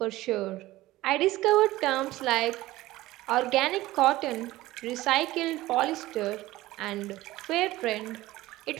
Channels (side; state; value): left; quieter; 17.3 dB